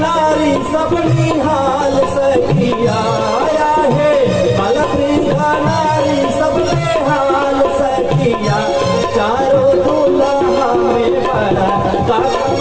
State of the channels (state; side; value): identical; both; correlation 1.00